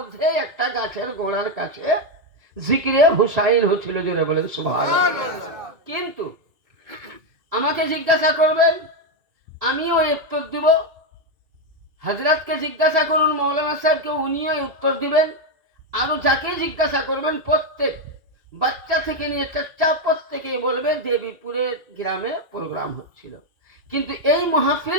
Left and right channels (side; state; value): left; late; 2.3 ms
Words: একটা গাছের গোড়ার কাছে জিকিরে হুসাইন হচ্ছিল, জোরে বলেন সুবহানাল্লাহ। কিন্তু আমাকে জিজ্ঞাসা করবেন, আমিও উত্তর দিব। হযরতকে জিজ্ঞাসা করুন, মৌলানা সাহেবকে, উনিও উত্তর দিবেন। আরো যাকে জিজ্ঞাসা করবেন, প্রত্যেক বাচ্চা থেকে নিয়ে চাচা প্রত্যেকে বলবে দেবীপুরের গ্রামে প্রোগ্রাম হচ্ছিল। কিন্তু এই